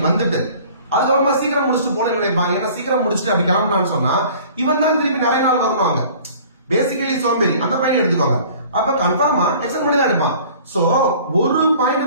வந்துட்டு அதுக்கப்புறமா சீக்கிரம் முடிச்சுட்டு போன நினைப்பாங்க. ஏன்னா சீக்கிரம் முடிச்சுட்டு அப்படி கிளம்புனான்னு சொன்னா இவன் தான் திருப்பி நிறைய நாள் வரணுவாங்க. பேசிக்கலி சோம்பேறி அந்த பாயிண்ட் எடுத்துக்கோங்க. அப்ப கன்ஃபார்மா எக்ஸ்டெண்ட் பண்ணி தான் எடுப்பான். சோ ஒரு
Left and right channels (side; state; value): both; inverted; correlation -0.49